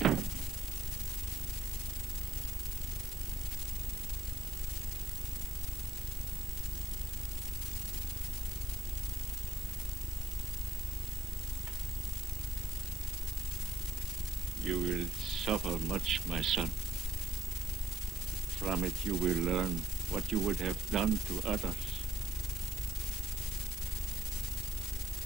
You will suffer much, my son. From it you will learn what you would have done to others.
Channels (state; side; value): normal; both; correlation 0.70